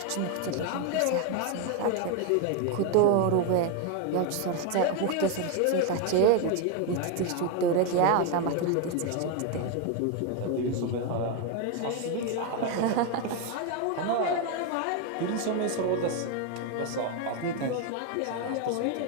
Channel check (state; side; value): different; both; correlation 0.02